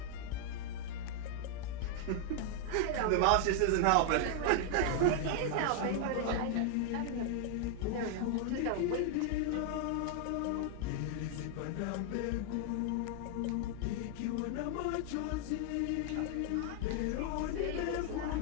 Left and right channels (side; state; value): both; different; correlation 0.00